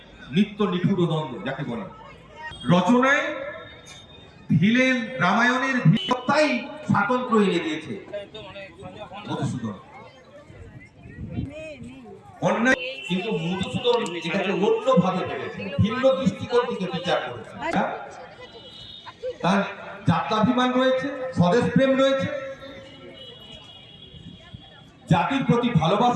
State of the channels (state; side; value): identical; both; correlation 1.00